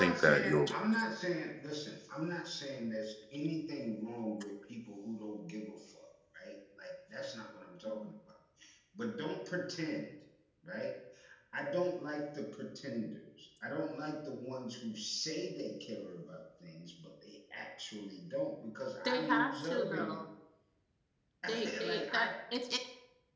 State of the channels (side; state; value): both; identical; correlation 1.00